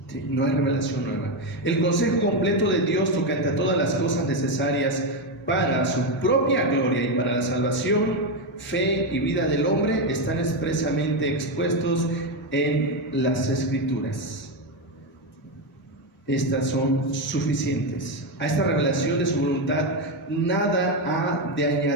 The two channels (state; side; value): normal; both; correlation 0.08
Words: ¿Sí? No hay revelación nueva. El consejo completo de Dios tocante a todas las cosas necesarias para su propia gloria y para la salvación, fe y vida del hombre están expresamente expuestos en las Escrituras. Estas son suficientes. A esta revelación de su voluntad nada ha de